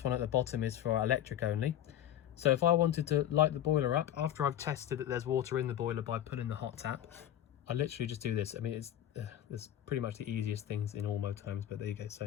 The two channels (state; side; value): quieter; right; 11.3 dB